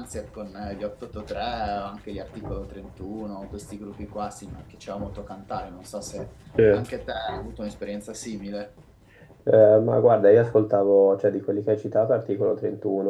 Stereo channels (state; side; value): identical; both; correlation 1.00